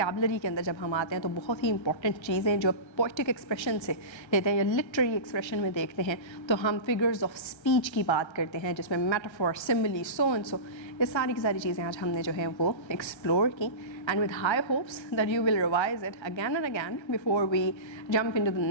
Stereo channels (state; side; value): late; right; 1.3 ms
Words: के अंदर जब हम आते हैं तो बहुत ही इंपॉर्टेंट चीज़ें जो पोइटिक एक्सप्रेशन से लेते हैं या लिटरेरी एक्सप्रेशन में देखते हैं, तो हम फिगर्स ऑफ स्पीच की बात करते हैं जिसमें metaphor, simile, so and so, ये सारी की सारी चीज़ें आज हमने जो है वो एक्सप्लोर की. And with high hopes that you will revise it again and again before we jump into the